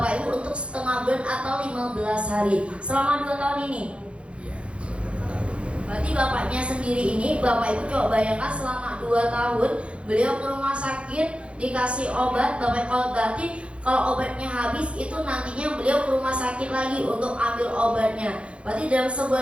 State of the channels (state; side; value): late; left; 0.060 ms